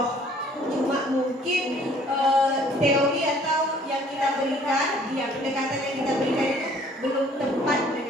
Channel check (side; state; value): both; normal; correlation 0.57